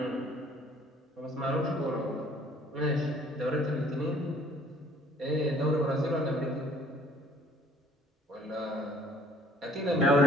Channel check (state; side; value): normal; both; correlation 0.58